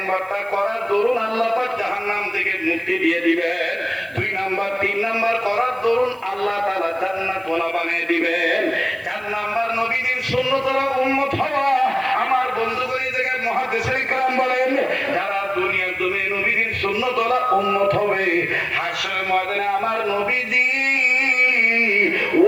করার দরুন আল্লাহ পাক জাহান্নাম থেকে মুক্তি দিয়ে দিবেন। 2 নাম্বার, 3 নাম্বার করার দরুন আল্লাহ তাআলা জান্নাত ওয়ালা বানিয়ে দিবেন। 4 নাম্বার, নবীদের সুন্নতরা উম্মত হওয়া। আমার বন্ধুগণ, এই জায়গায় মুহাদ্দিসিন کرام বলেন, যারা দুনিয়ার জমিনে নবীদের সুন্নতরা উম্মত হবে, হাশরের ময়দানে আমার নবীজি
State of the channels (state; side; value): noise; right; hiss, 29 dB below the sound